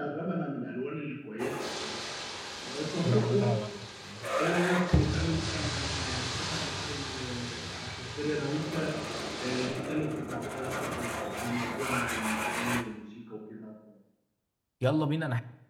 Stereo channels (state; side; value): identical; both; correlation 1.00